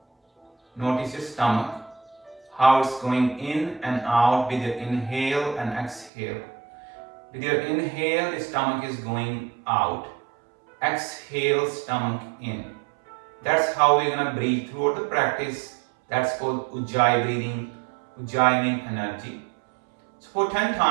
Notice your stomach, how it's going in and out with your inhale and exhale. With your inhale, the stomach is going out. Exhale, stomach in. That's how we're going to breathe throughout the practice. That's called Ujjayi breathing, Ujjayi energy. So for 10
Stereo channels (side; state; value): left; drops out; at 6.1 s